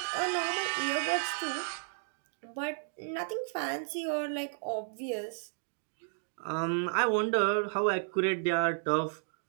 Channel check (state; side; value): silent; left; digital silence